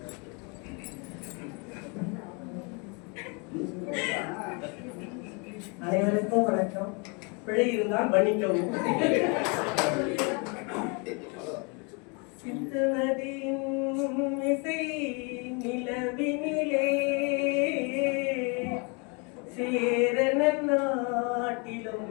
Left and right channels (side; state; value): right; quieter; 33.1 dB